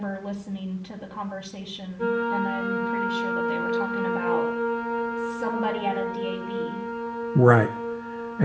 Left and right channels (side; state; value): both; identical; correlation 1.00